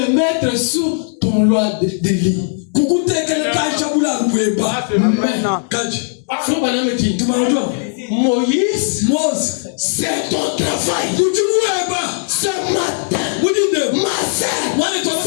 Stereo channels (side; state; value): right; silent; digital silence